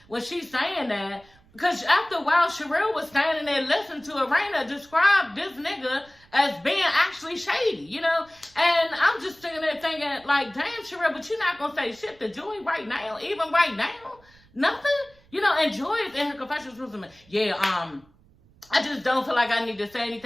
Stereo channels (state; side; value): noise; right; rumble, 29 dB below the sound